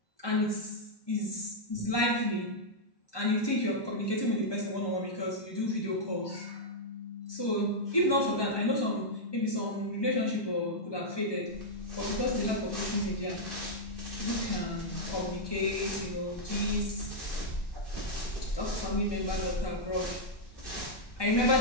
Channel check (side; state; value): right; late; 1.1 ms